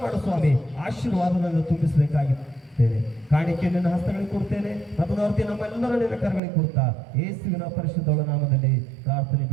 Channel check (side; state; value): left; drops out; at 6.4 s